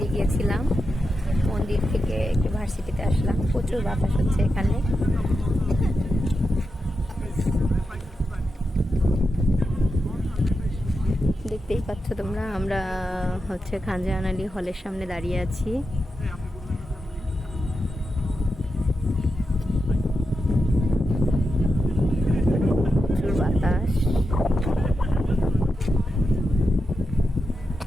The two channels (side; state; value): both; normal; correlation 0.88